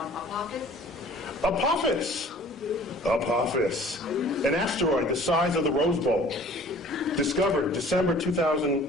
Apophis, an asteroid the size of the Rose Bowl, discovered December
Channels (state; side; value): normal; both; correlation 0.50